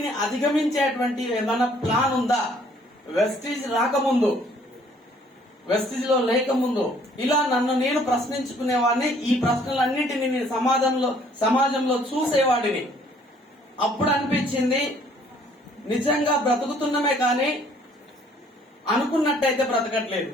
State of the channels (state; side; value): normal; both; correlation 0.60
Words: అధిగమించేటువంటి ఏమైనా ప్లాన్ ఉందా? వెస్టీజ్ రాకముందు, వెస్టీజ్ లో లేకముందు ఇలా నన్ను నేను ప్రశ్నించుకునేవాడిని. ఈ ప్రశ్నలన్నింటినీ నేను సమాజంలో చూసేవాడిని. అప్పుడు అనిపించింది, నిజంగా బ్రతుకుతున్నామే కానీ అనుకున్నట్టయితే బ్రతకట్లేదు.